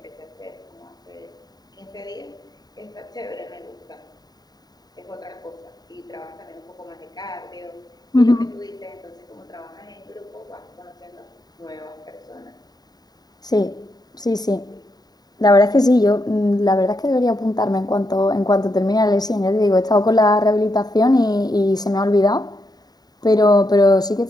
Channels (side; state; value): right; late; 0.19 ms